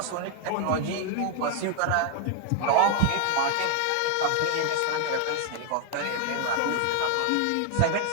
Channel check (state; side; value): different; both; correlation 0.00